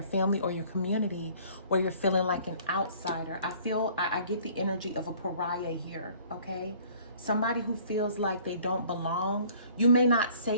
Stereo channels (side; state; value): both; inverted; correlation -0.54